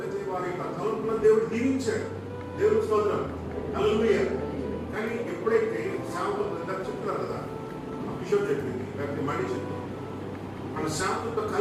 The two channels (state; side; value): identical; both; correlation 1.00